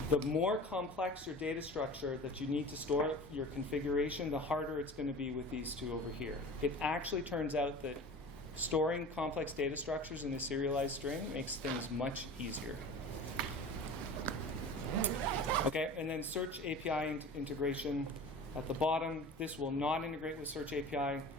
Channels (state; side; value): normal; both; correlation 0.37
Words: the more complex your data structure that you need to store your configuration, the harder it's going to be with these two over here. It actually turns out that storing complex data structures in a serialized string makes things much easier. Okay, and then Search API integration at the bottom. This will not integrate with Search API